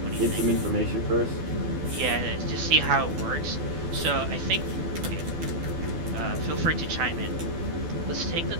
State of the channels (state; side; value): late; left; 12 ms